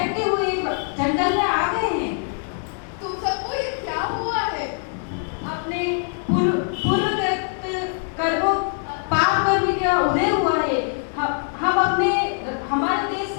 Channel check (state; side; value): silent; right; 57 dB below the other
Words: हुए जंगल में आ गए हैं। तुम सबको ये क्या हुआ है? अपने पूर्वगत कर्मों पाप कर्म का उदय हुआ है। हम अपने हमारे देश